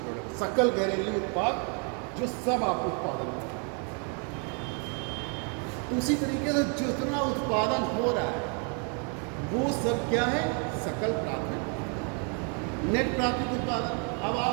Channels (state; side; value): quieter; left; 38.7 dB